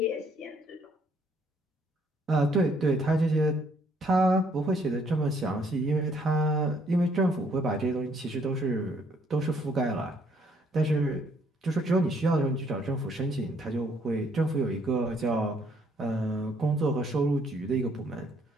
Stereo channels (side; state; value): both; normal; correlation 0.66